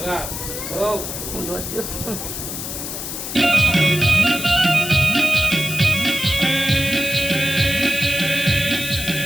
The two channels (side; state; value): left; noise; hiss, 6 dB below the sound